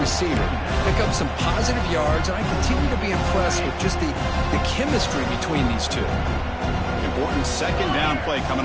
Pick up some positive yards, and I continue to be impressed with just the chemistry between these two. Important second down play coming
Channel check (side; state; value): both; identical; correlation 1.00